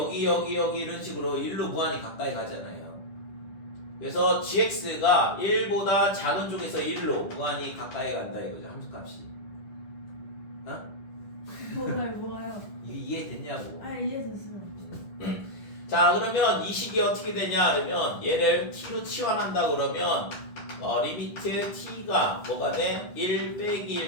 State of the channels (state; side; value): late; right; 10 ms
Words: 이런 식으로 1로 무한히 가까이 가잖아요. 그래서 gx가 1보다 작은 쪽에서 1로 무한히 가까이 간다 이거죠. 함수 값이. 뭐가요? 이해됐냐고. 이해됐어요. 자, 그러면 이 식이 어떻게 되냐 그러면 얘를 t로 치환한다 그러면 리미트 t가 뭐가 돼? 1 빼기